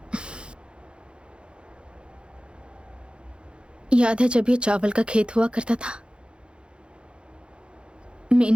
याद है जब ये चावल का खेत हुआ करता था?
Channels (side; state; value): left; late; 0.055 ms